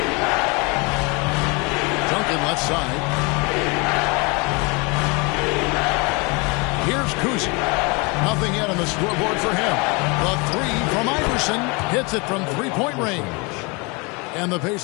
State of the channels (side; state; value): right; quieter; 29.3 dB